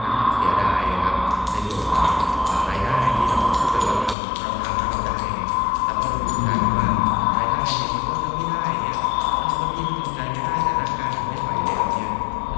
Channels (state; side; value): drops out; right; at 4.2 s